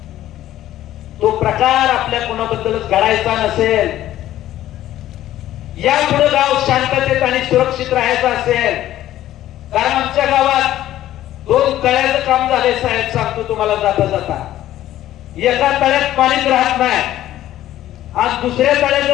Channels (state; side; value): quieter; right; 13.4 dB